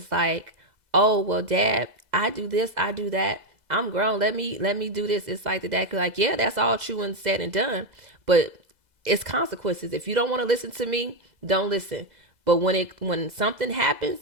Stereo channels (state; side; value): late; left; 2.0 ms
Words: like, "Oh, well, Dad, I do this, I do that. I'm grown. Let me do this." It's like the dad could like, "Yeah, that's all true and said and done, but it's consequences. If you don't want to listen to me, don't listen. But when something happens,